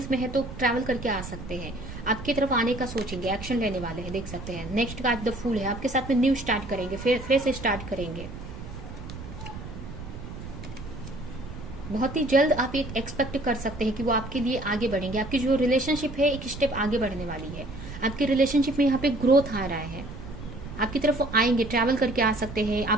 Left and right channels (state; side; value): noise; right; rumble, 11 dB below the sound